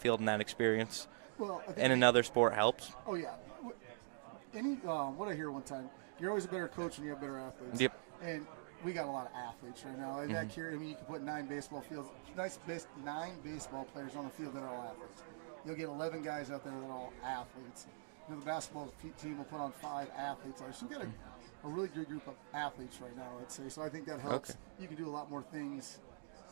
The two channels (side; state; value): left; silent; digital silence